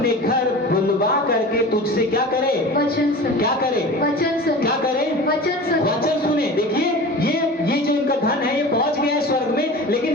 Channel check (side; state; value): both; normal; correlation 0.35